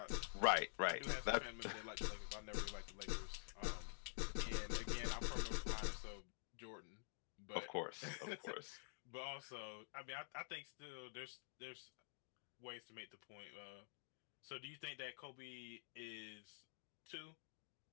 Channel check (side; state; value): right; silent; digital silence